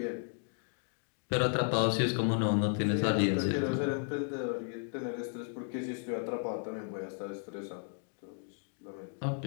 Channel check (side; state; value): right; silent; 55 dB below the other